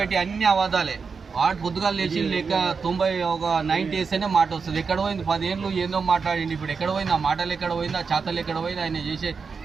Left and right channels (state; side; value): quieter; left; 5.3 dB